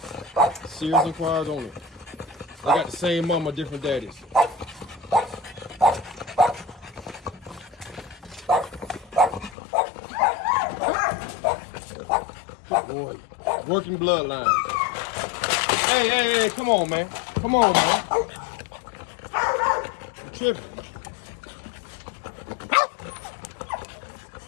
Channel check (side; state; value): right; drops out; at 9.6 s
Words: Serious inquiries on it. They got the same mama, different daddies. Good boy. Working bloodline. Hey, come on, man. Come on, man. I'm tripping.